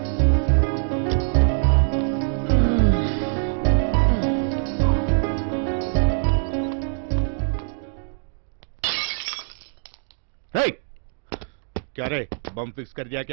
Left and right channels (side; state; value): left; silent; digital silence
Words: क्या रे बम फिक्स कर दिया